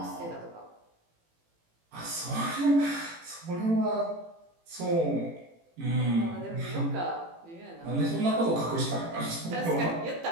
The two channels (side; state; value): left; late; 18 ms